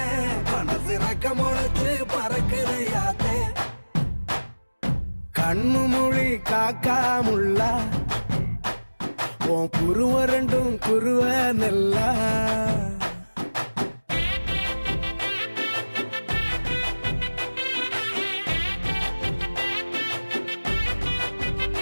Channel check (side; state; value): both; inverted; correlation -1.00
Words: மனசு ரக்க முளைச்சு பறக்குதையாத்தே கண்ணு மொழி காக்காமுள்ள உன் குருவ ரெண்டும் குருவ நெல்லா